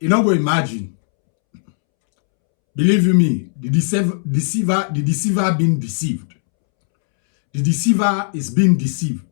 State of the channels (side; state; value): right; silent; 68 dB below the other